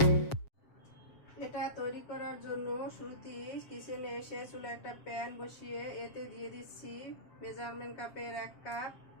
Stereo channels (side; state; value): right; late; 7.2 ms